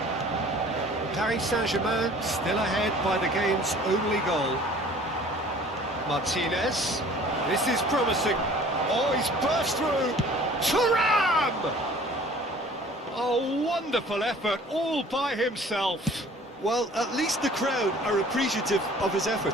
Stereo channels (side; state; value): both; normal; correlation 0.50